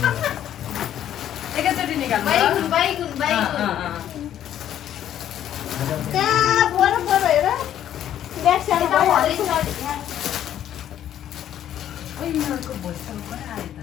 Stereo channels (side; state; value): right; quieter; 11.0 dB